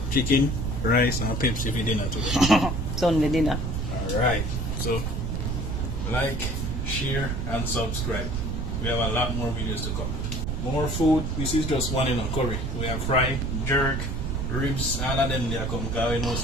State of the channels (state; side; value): noise; right; rumble, 1 dB below the sound